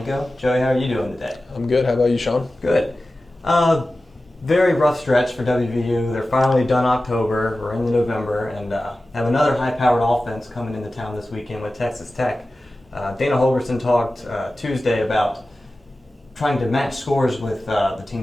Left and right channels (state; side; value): normal; both; correlation 0.95